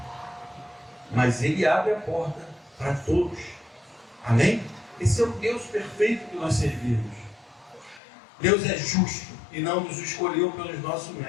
Mas ele abre a porta para todos. Amém? Esse é o Deus perfeito que nós servimos. Deus é justo e não nos escolheu pelos nossos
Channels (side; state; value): right; drops out; at 8.0 s